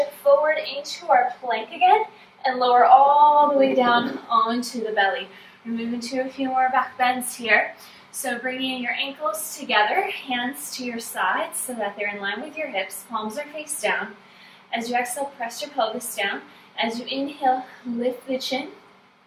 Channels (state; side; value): identical; both; correlation 1.00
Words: forward into our plank again and lower all the way down onto the belly. We're moving to a few more back bends here. So bringing your ankles together, hands to your sides so that they're in line with your hips, palms are face down. As you exhale, press your pelvis down. As you inhale, lift the chin,